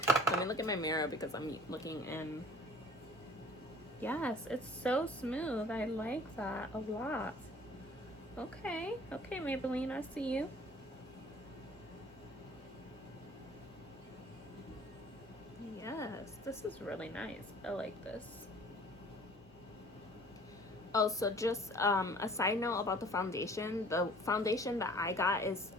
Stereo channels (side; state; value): both; normal; correlation 0.51